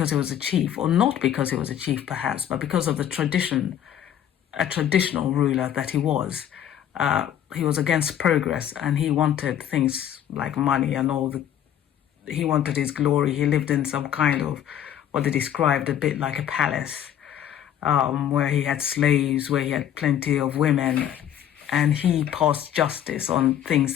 he was a chief, or not because he was a chief perhaps, but because of the tradition, a traditional ruler that he was. He was against progress, and he wanted things like money and he wanted his glory. He lived in some kind of what they described a bit like a palace, where he had slaves, where he had plenty of women, and he passed justice on things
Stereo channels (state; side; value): quieter; right; 10.2 dB